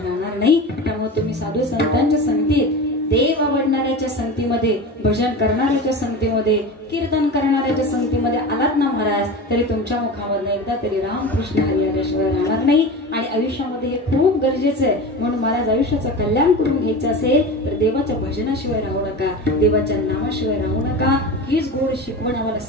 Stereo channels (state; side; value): normal; both; correlation 0.29